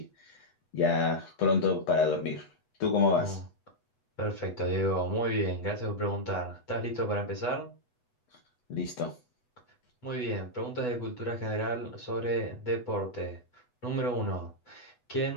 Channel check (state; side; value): late; right; 8.1 ms